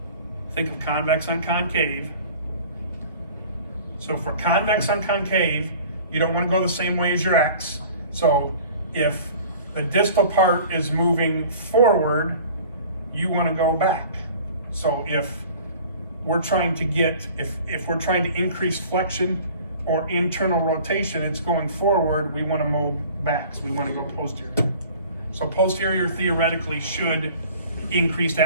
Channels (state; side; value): inverted; both; correlation -0.46